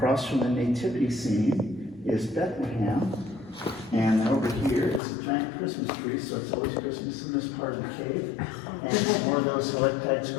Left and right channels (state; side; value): drops out; right; at 5.0 s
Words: from the nativity scene is Bethlehem. And then over here is a giant Christmas tree, so it's always Christmas in this part of the cave. And some more of those stalactites